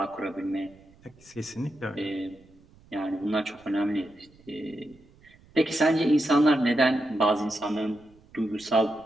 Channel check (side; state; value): right; noise; rumble, 27 dB below the sound